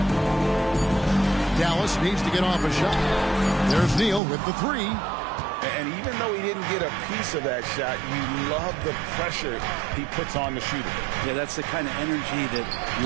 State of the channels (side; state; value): left; drops out; at 4.2 s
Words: Dallas needs to get off a shot. There's Neal with the 3. And even though he didn't get a piece of that shot, you love the pressure he puts on the shooter. Yeah, that's the kind of energy that you